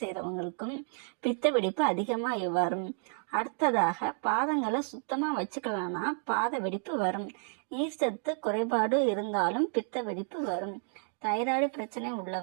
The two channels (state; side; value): silent; left; 56 dB below the other